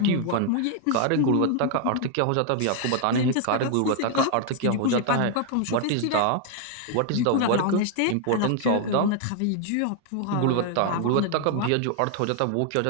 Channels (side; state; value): both; different; correlation 0.00